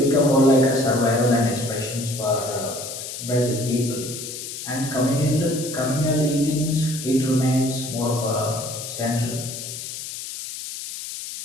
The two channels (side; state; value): left; noise; hiss, 8 dB below the sound